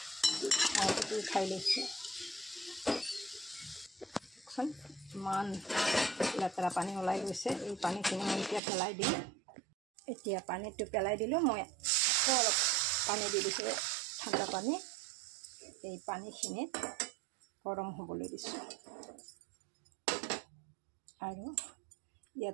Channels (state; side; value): drops out; left; at 8.6 s